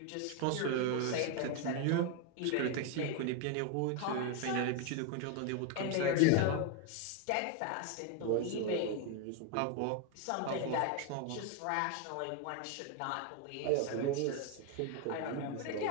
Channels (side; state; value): both; different; correlation 0.01